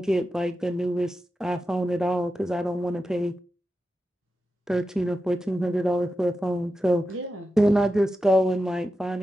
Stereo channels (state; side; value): normal; both; correlation 0.90